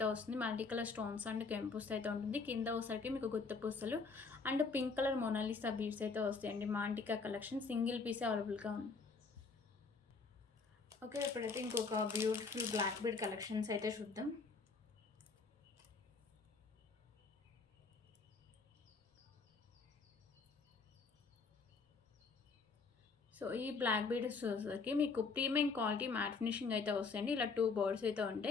వస్తుంది. మల్టీ కలర్ స్టోన్స్ అండ్ కెంపుస్ అయితే ఉంటుంది. కింద ఒకసారికి మీకు గుత్త పూసలు and pink colour Mona Lisa beads అయితే వస్తాయండి. మాంటికా కలెక్షన్ సింగిల్ పీసే అవైలబుల్గా ఉంది. ఓకే. ఇప్పుడైతే ఇంకొక బ్యూటిఫుల్ బ్లాక్ బీడ్ కలెక్షన్స్ అయితే చూద్దాం. సో ఈ బ్లాక్ బీడ్స్ వచ్చేసరికి మీకు ప్రీమియం క్వాలిటీ మ్యాట్ ఫినిషింగ్ అయితే వస్తాయండి. ఇలా 2 బర్డ్స్ అయితే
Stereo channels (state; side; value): quieter; right; 4.6 dB